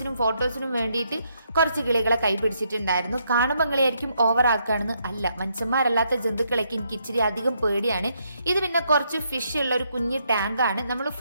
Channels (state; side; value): inverted; both; correlation -0.75